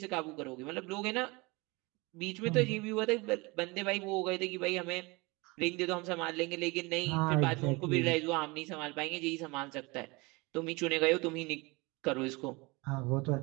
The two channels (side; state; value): left; quieter; 25.4 dB